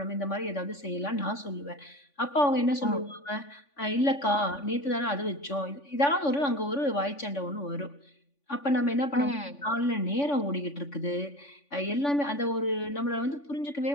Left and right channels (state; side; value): late; right; 3.5 ms